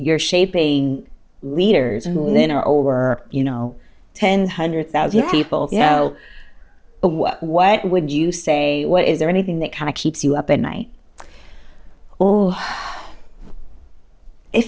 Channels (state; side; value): identical; both; correlation 1.00